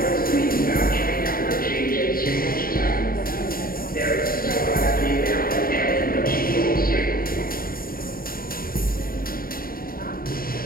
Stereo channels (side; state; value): right; late; 0.42 ms